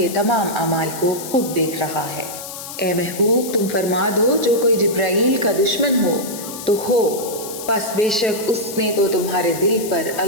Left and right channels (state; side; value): noise; left; hiss, 11 dB below the sound